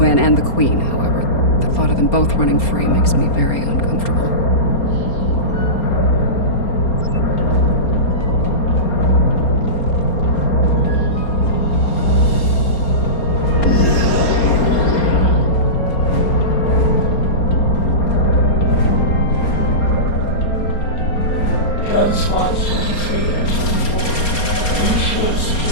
and the Queen, however. The thought of them both running free makes me very uncomfortable.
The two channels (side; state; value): right; late; 4.3 ms